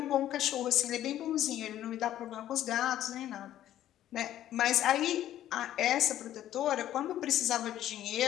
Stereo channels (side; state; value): right; quieter; 12.3 dB